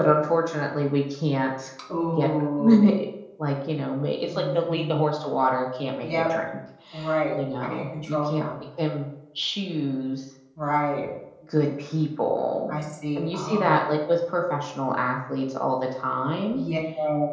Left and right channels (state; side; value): identical; both; correlation 1.00